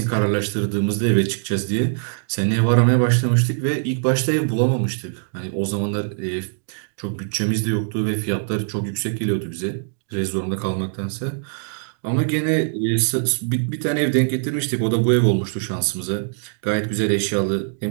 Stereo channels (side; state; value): left; silent; digital silence